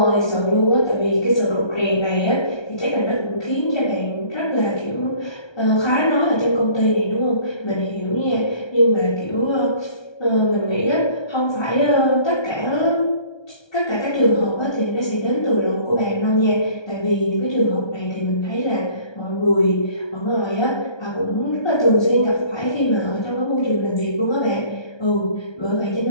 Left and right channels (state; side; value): late; right; 1.3 ms